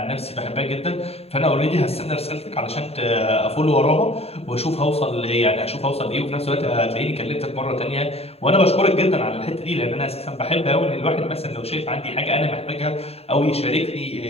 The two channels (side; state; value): right; late; 0.29 ms